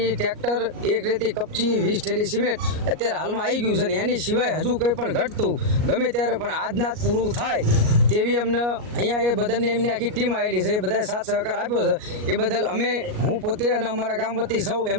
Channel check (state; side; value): late; left; 38 ms